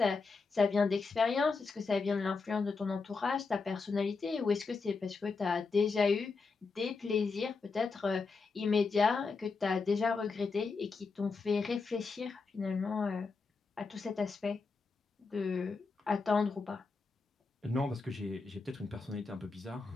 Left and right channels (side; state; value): right; quieter; 4.4 dB